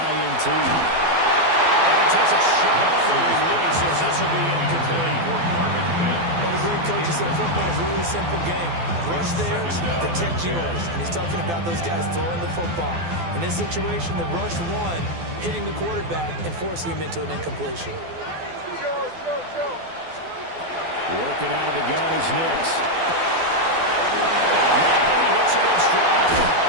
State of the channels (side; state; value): left; late; 12 ms